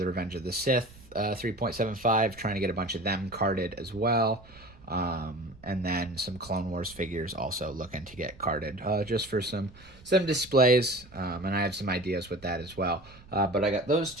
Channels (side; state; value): right; noise; rumble, 22 dB below the sound